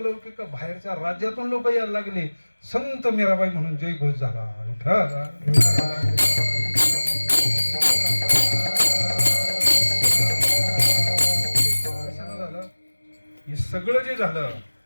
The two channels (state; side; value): inverted; both; correlation -1.00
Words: लौकिक बाहेरच्या राज्यातून लोक यायला लागले. संत मीराबाई म्हणून जय घोष झाला. कशानं झालं? हे सगळं जे झालं